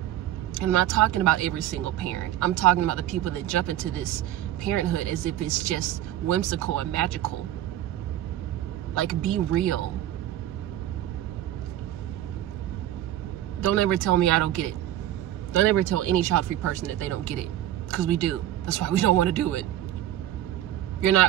And I'm not talking about every single parent. I'm talking about the people that jump into this parenthood as if it's just whimsical and magical. Like, be real. Don't ever tell me I don't get it. Don't ever tell any child-free person that they don't get it. Because we do. That's why we don't want to do it. You're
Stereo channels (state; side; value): quieter; left; 12.9 dB